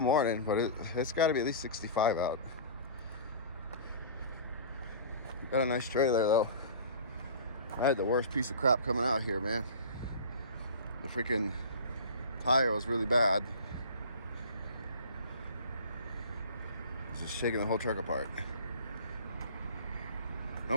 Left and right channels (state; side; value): inverted; both; correlation -0.38